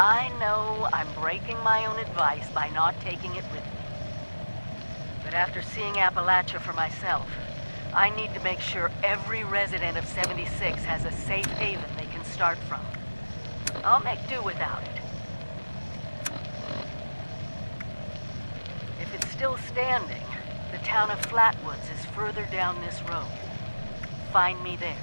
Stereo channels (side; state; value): both; inverted; correlation -1.00